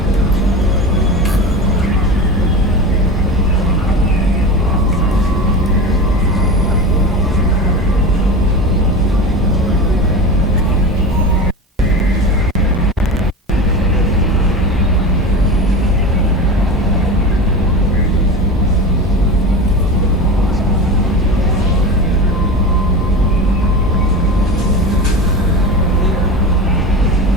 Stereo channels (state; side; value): normal; both; correlation 0.27